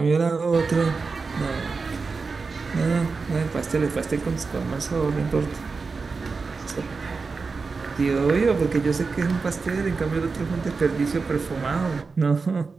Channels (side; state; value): left; quieter; 4.5 dB